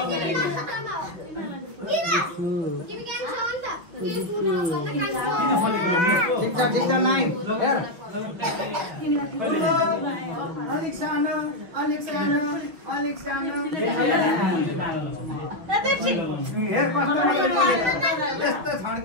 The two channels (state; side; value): late; left; 5.8 ms